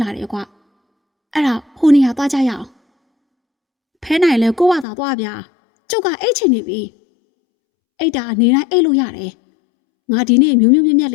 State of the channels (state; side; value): drops out; right; at 4.9 s